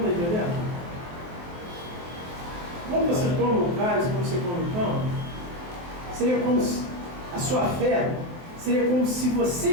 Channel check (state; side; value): late; left; 23 ms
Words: está entendendo? Quando você toma o cálice, quando você come o pão, seria como se a sua fé seria como se você